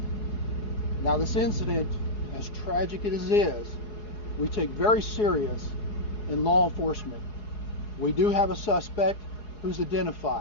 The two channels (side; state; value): right; late; 4.8 ms